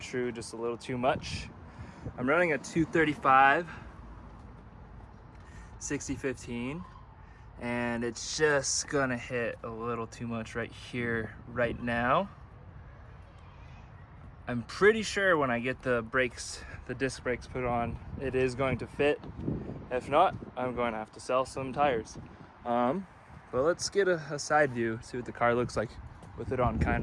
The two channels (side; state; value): both; identical; correlation 1.00